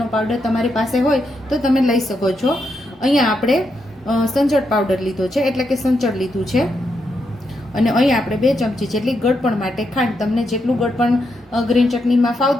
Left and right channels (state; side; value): normal; both; correlation 0.82